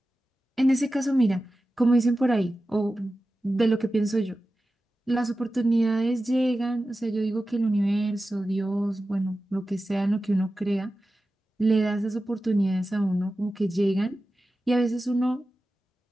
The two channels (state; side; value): normal; both; correlation 0.94